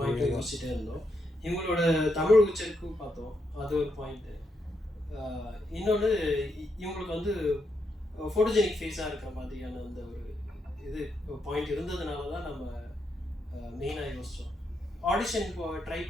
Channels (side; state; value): both; normal; correlation 0.81